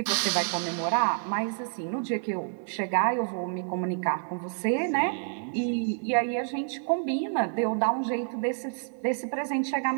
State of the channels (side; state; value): left; silent; digital silence